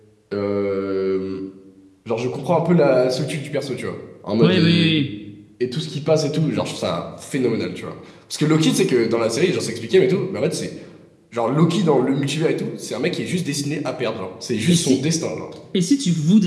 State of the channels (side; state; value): both; identical; correlation 1.00